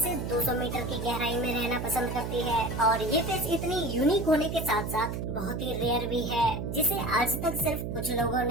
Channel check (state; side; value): noise; right; hum, 4 dB below the sound